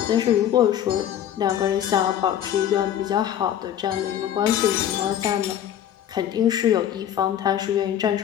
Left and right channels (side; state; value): right; quieter; 10.6 dB